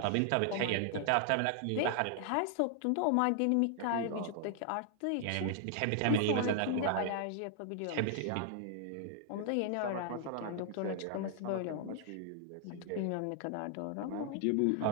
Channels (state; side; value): different; both; correlation 0.00